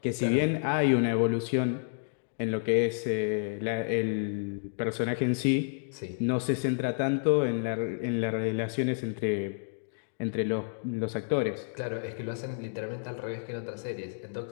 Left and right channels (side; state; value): right; silent; digital silence